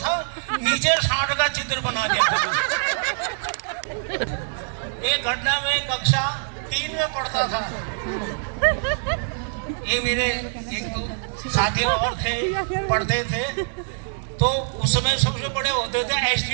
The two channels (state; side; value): silent; left; 61 dB below the other